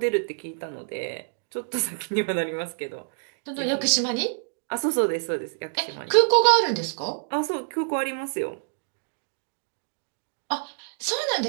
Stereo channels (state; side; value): silent; left; digital silence